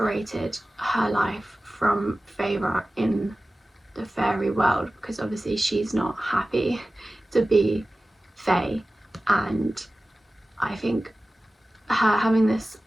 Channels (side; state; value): both; normal; correlation 0.96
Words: her life from Feyre in the fairy world, because obviously she's not happy to be Fae, and I think her having this